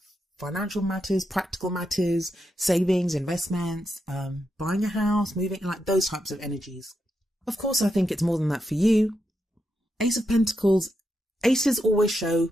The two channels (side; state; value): both; normal; correlation 0.84